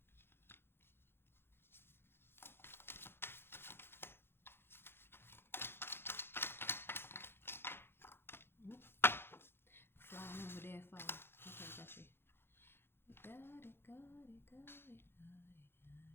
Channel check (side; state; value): right; late; 0.11 ms